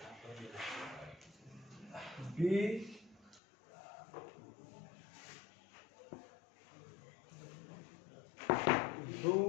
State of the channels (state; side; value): drops out; right; at 3.4 s